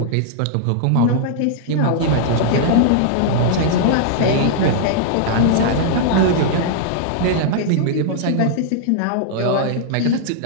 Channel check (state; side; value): different; both; correlation -0.01